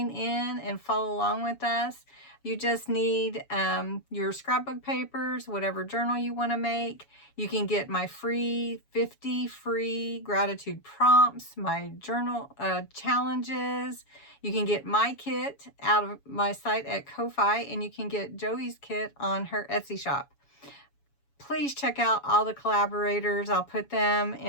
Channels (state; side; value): late; right; 7.1 ms